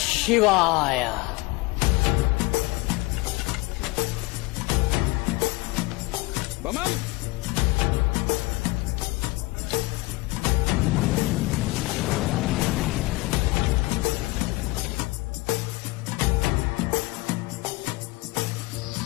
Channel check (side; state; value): right; quieter; 22.7 dB